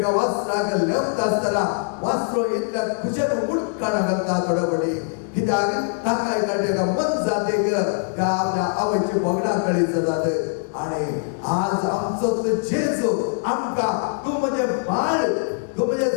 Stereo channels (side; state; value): right; silent; 64 dB below the other